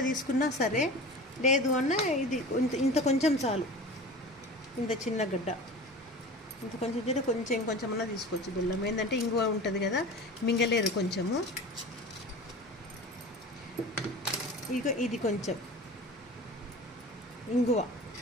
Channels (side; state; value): both; normal; correlation 0.36